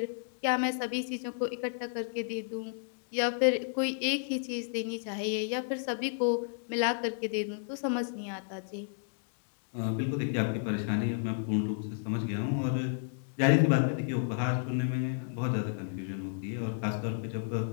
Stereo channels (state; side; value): silent; right; digital silence